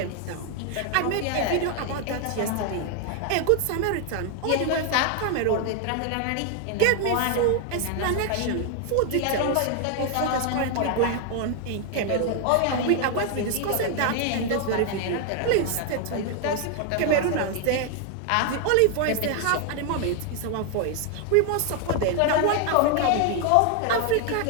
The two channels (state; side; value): different; both; correlation 0.00